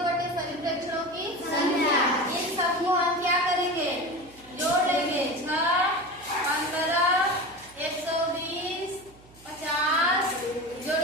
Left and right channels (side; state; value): right; noise; hum, 25 dB below the sound